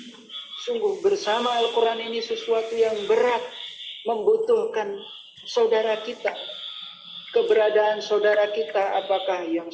Sungguh bersama Al-Quran ini sesuatu yang berat, membutuhkan saudara kita. Keberadaan saudara kita, apakah yang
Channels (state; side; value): identical; both; correlation 1.00